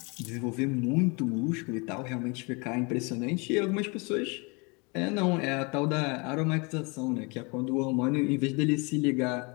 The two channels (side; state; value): right; quieter; 30.0 dB